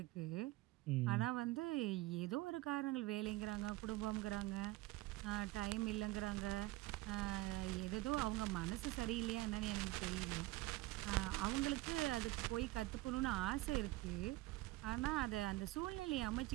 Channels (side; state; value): left; quieter; 19.0 dB